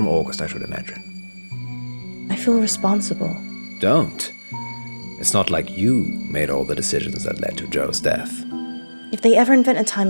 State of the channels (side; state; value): both; inverted; correlation -1.00